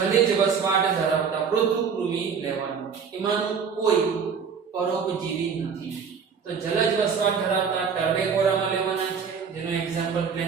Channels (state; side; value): quieter; left; 6.3 dB